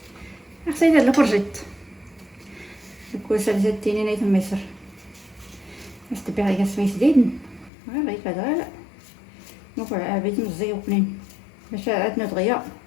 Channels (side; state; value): right; drops out; at 7.7 s